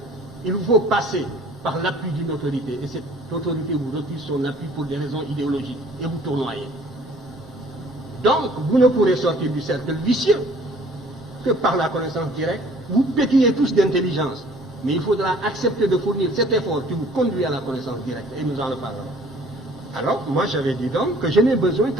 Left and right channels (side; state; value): both; normal; correlation 0.54